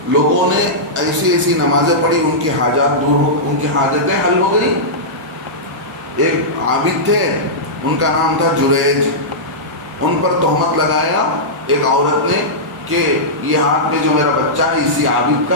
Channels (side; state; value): both; normal; correlation -0.13